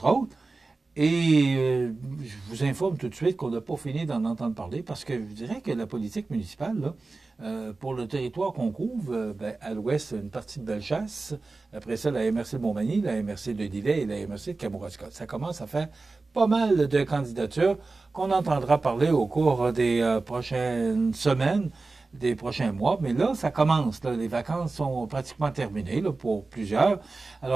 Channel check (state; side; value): quieter; left; 3.6 dB